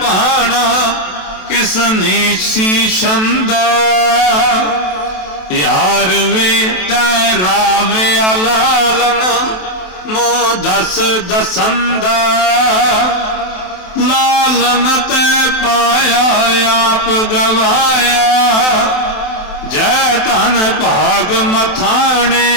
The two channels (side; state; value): right; late; 27 ms